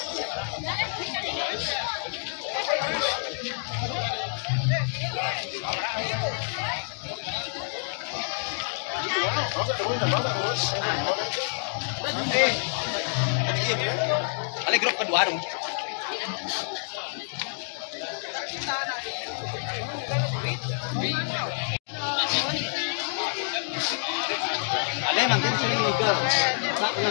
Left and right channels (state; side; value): silent; right; digital silence